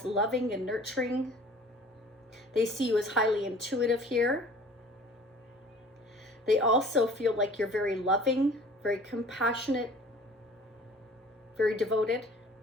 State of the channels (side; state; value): both; normal; correlation 0.48